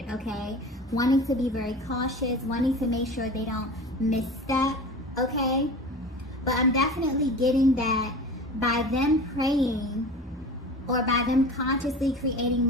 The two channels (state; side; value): normal; both; correlation 0.35